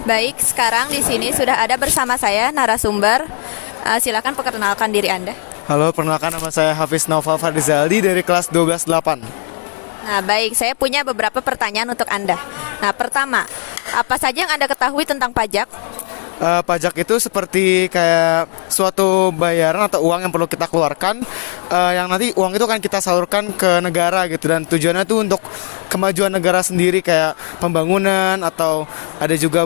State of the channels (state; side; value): silent; right; digital silence